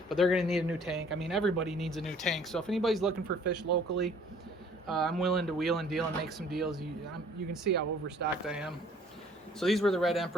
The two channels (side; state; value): both; normal; correlation 0.56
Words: But they're going to need a new tank. I mean, everybody needs a new tank. So if anybody's looking for fish locally, I'm willing to wheel and deal and make some deals. You can see how overstocked I am. So these were the Red